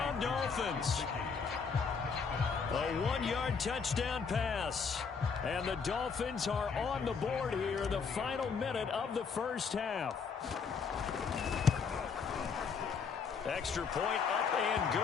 Dolphins. A 1-yard touchdown pass. And the Dolphins are on the board here in the final minute of the first half. Extra point up and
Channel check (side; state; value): right; quieter; 5.7 dB